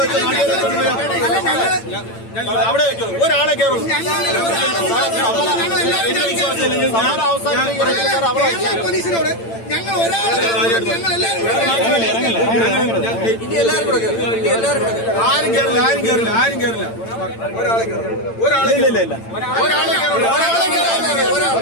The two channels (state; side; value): late; right; 8.9 ms